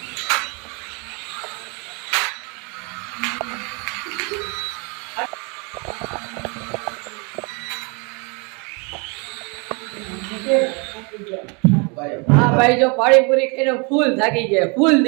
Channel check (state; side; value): quieter; left; 32.6 dB